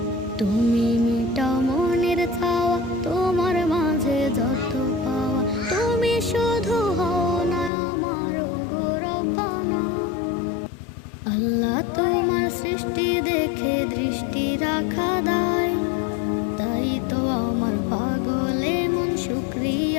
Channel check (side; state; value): right; drops out; at 7.7 s